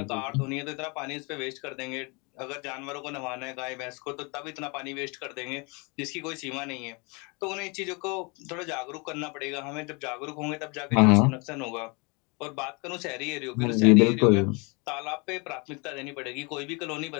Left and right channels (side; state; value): right; quieter; 29.9 dB